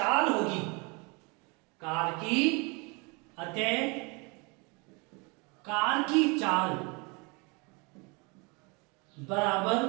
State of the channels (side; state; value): left; quieter; 29.6 dB